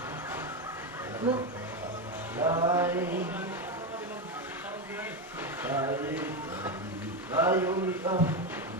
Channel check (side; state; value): both; normal; correlation 0.12